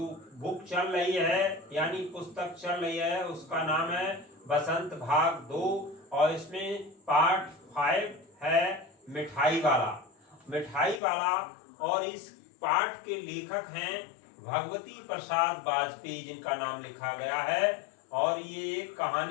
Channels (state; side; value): drops out; right; at 11.0 s